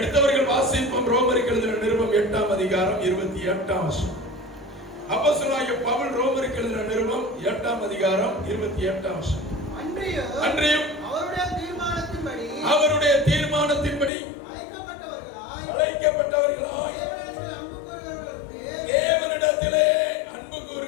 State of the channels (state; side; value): drops out; right; at 14.1 s